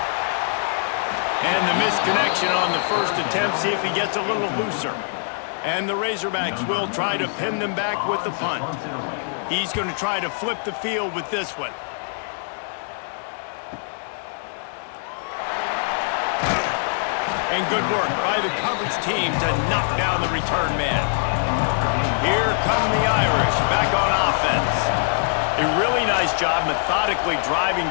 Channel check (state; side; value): silent; right; digital silence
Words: And the misconnection on the first attempt. See if he gets a little looser. And the Razorbacks will try to pin them back with the punt. He's going to try to flip the field with this one. And good work by the coverage team to knock down the return man. Here come the Irish back on offense. A really nice job methodically driving